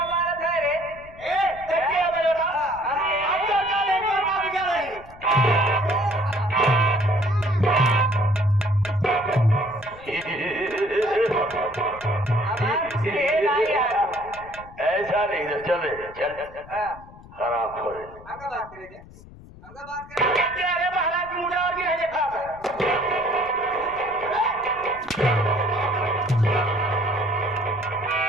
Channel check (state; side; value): noise; left; rumble, 20 dB below the sound